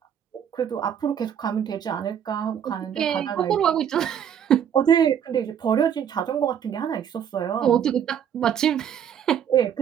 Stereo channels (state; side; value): quieter; left; 8.9 dB